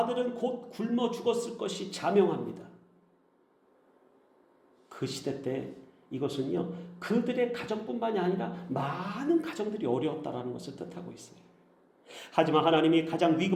곧 굶어 죽었을 것이 자명합니다. 그 시대 때 이것은요 그들의 가정뿐만이 아니라 많은 가정들이 어려웠다라는 것을 뜻하고 있어요. 하지만 하나님이 가장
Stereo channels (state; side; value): identical; both; correlation 1.00